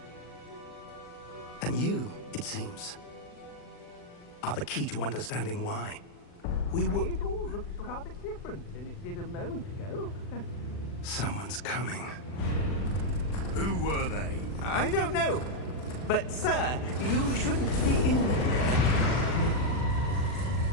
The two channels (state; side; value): late; right; 40 ms